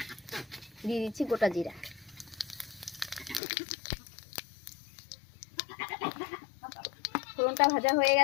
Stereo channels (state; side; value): drops out; right; at 3.4 s